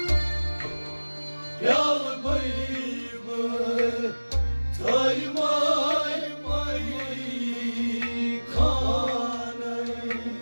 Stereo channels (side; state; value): both; inverted; correlation -1.00